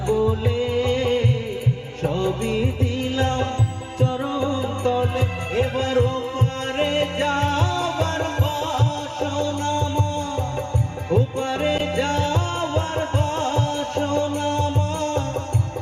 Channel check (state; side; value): identical; both; correlation 1.00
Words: বলে, সবই দিলাম চরণ তলে। এবার ওপারে যাবার বাসনা মা, ওপারে যাবার বাসনা